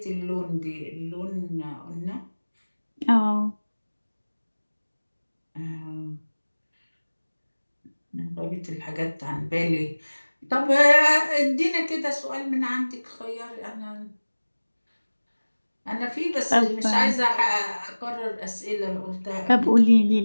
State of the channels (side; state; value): both; inverted; correlation -1.00